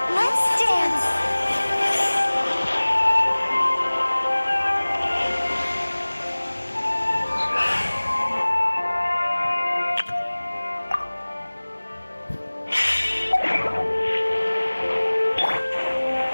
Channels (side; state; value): both; inverted; correlation -1.00